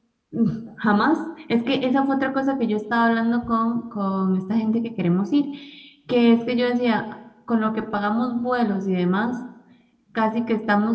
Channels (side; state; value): both; identical; correlation 1.00